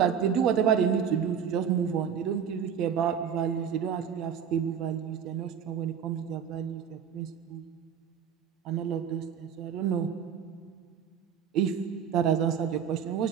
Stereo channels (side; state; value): left; quieter; 7.8 dB